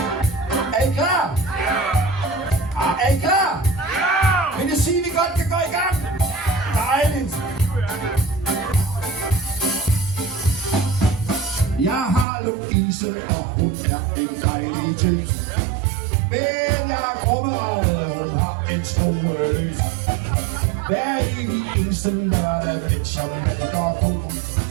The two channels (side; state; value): left; drops out; at 12.2 s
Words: Er I klar? Ja! Er I klar? Ja! Vil det sige, at vi godt kan gå i gang? Dejligt! Jeg har Louise, og hun er en dejlig tøs. Men jeg er krummeragret, og hun har en strueløs. Hver evig eneste lørdag, mens jeg malker ko,